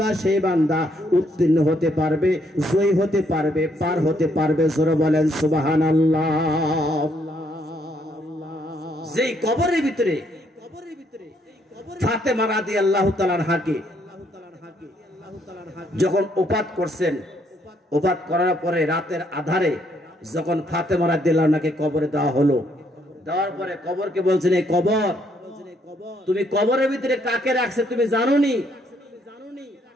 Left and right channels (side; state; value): both; normal; correlation 0.71